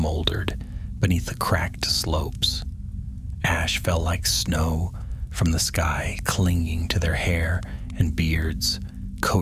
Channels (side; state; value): both; identical; correlation 1.00